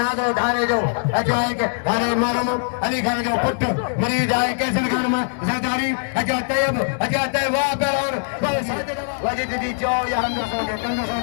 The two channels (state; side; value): silent; right; 64 dB below the other